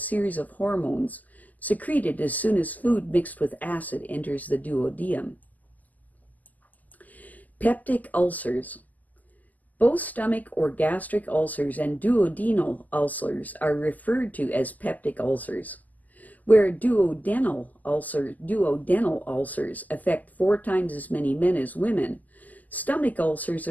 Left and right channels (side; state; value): right; late; 0.080 ms